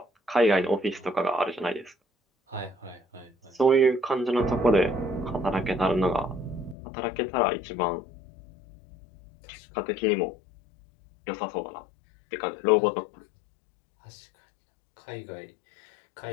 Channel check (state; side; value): drops out; right; at 6.8 s